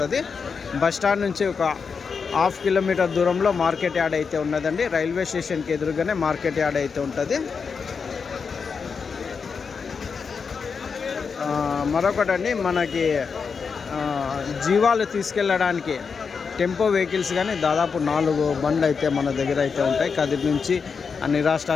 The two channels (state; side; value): quieter; right; 5.6 dB